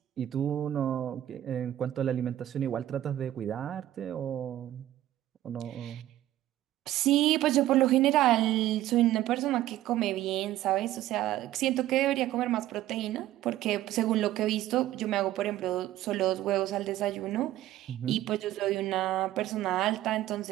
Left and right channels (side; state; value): left; quieter; 13.8 dB